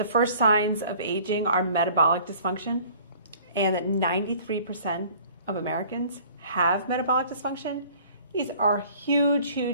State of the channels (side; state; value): both; inverted; correlation -0.51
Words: first signs of aging are metabolic dysfunction, and that 93% of Americans have metabolic dysfunction? These are